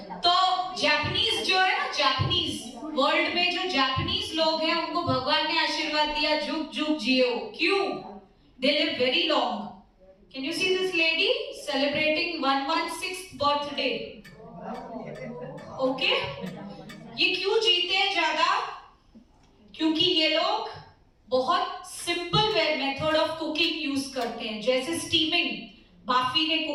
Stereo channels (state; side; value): identical; both; correlation 1.00